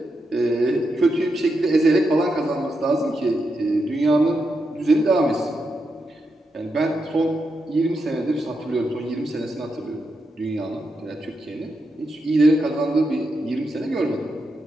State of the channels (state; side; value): normal; both; correlation 0.85